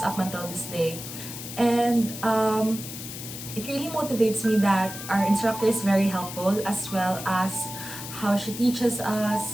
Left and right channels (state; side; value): noise; left; hiss, 10 dB below the sound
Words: up until this day. And it really motivates me that our instructor is very helpful, as well as how she teaches